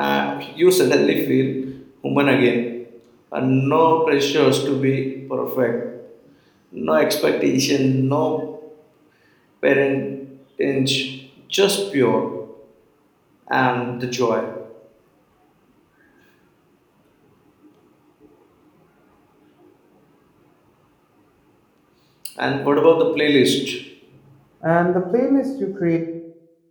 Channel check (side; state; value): both; identical; correlation 1.00